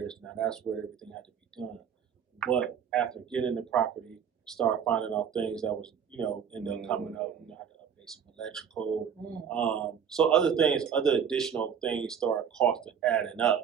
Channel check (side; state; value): left; quieter; 7.6 dB